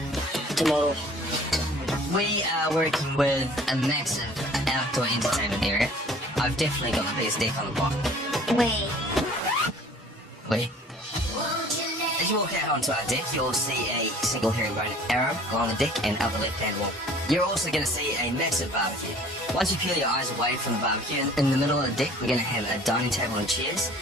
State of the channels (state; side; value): normal; both; correlation 0.50